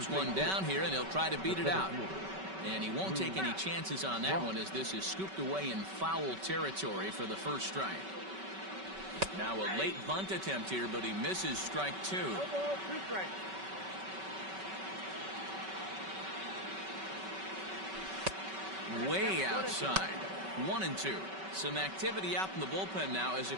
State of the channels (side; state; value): left; late; 5.3 ms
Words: one down here, and he'll try to beat it out. And he won't take any chances on that one as this is scooped away in foul territory for the first strike. Now a late bunt attempt here, but he misses strike two. No ball, 2 strikes. Way outside. 1-2. Some activity out in the bullpen now as a